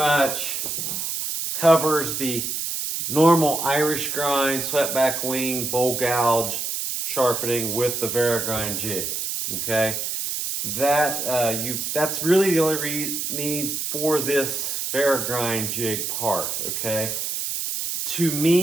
covers the normal Irish grind, swept-back wing, bowl gouge sharpening with the Varigrind jig. Okay, that's really the only need for this Varigrind jig part. Okay, to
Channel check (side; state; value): right; noise; hiss, 3 dB below the sound